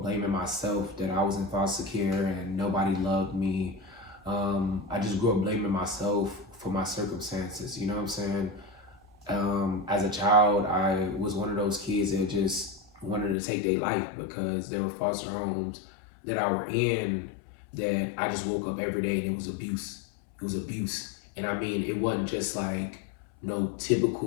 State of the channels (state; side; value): drops out; right; at 13.4 s